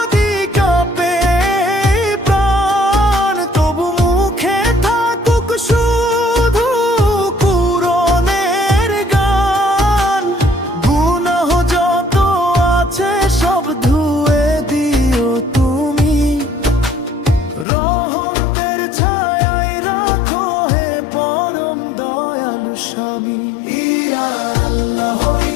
কাঁপে প্রাণ, তবু মুখে থাকুক শুধু কুরআনের গান। গুনাহ যত আছে সব ধুয়ে দিও তুমি, রহমতের ছায়ায় রাখো হে পরম দয়ালু স্বামী। ইয়া আল্লাহ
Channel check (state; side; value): drops out; right; at 17.7 s